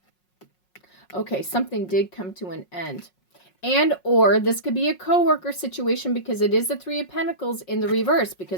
Okay, something did come to an end. And or this could be a coworker situation because it is the Three of Pentacles in the reverse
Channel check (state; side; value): late; right; 5.5 ms